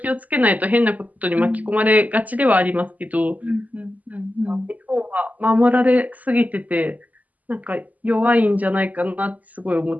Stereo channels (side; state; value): left; late; 0.077 ms